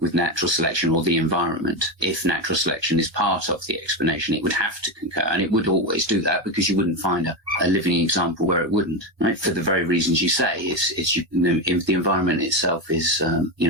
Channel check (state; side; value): late; left; 1.3 ms